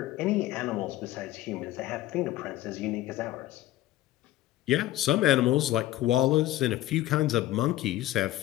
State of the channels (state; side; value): quieter; right; 15.1 dB